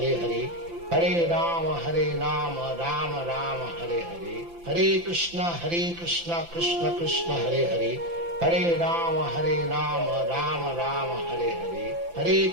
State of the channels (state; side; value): late; left; 5.9 ms